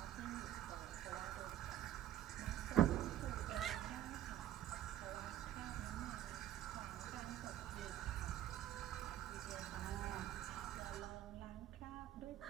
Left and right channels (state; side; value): quieter; left; 12.3 dB